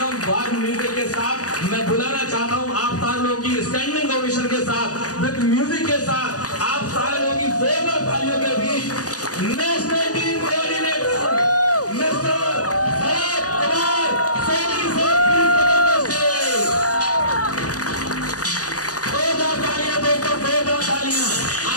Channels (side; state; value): right; late; 0.67 ms